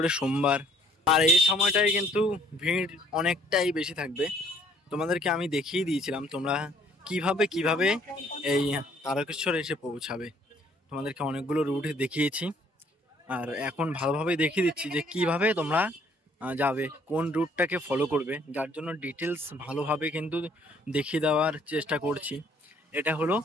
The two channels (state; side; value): normal; both; correlation 0.61